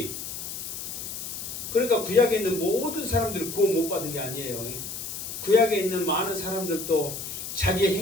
그러니까 구약에 있는 모든 사람들이 구원 못 받은 게 아니에요. 구약에 있는 많은 사람들도 자기의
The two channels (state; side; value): noise; left; hiss, 7 dB below the sound